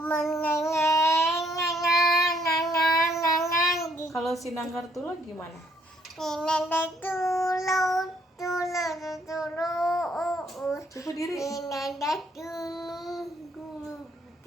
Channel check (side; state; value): both; normal; correlation 0.68